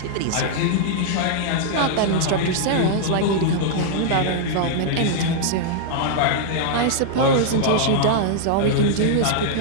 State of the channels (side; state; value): both; different; correlation -0.01